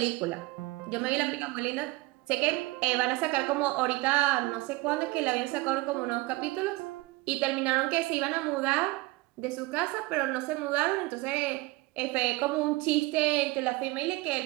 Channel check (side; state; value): left; quieter; 21.8 dB